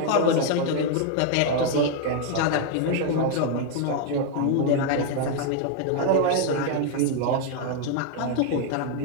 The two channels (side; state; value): both; different; correlation 0.00